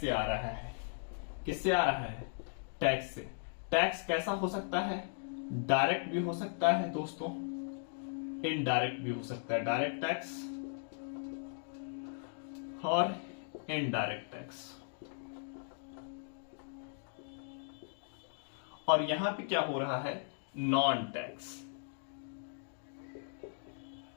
आ रहा है, किससे आ रहा है, टैक्स से। टैक्स कैसा हो सकता है, डायरेक्ट भी हो सकता है दोस्तों, इनडायरेक्ट भी हो सकता है। डायरेक्ट टैक्स और इनडायरेक्ट टैक्स। और यहां पे क्या हो रहा है, नॉन टैक्स।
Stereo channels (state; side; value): silent; right; digital silence